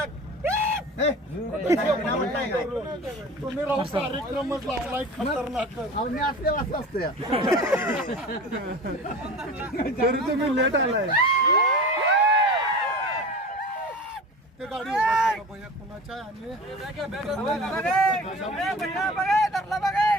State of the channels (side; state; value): both; normal; correlation 0.35